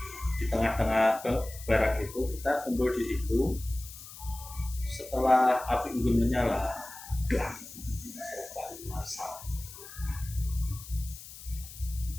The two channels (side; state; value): left; noise; hiss, 15 dB below the sound